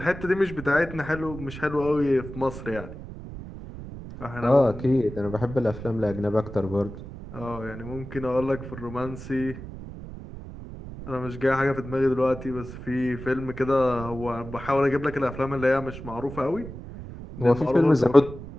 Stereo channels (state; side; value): noise; right; rumble, 12 dB below the sound